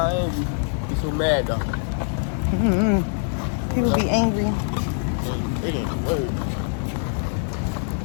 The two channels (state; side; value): silent; right; 63 dB below the other